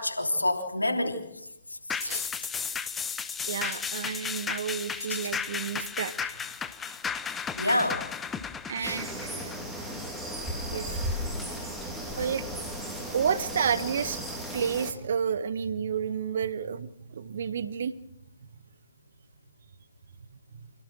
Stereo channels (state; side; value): inverted; both; correlation -0.44